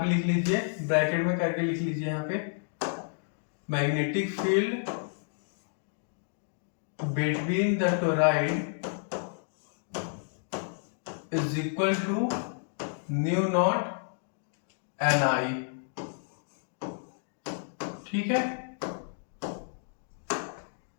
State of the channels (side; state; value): right; silent; digital silence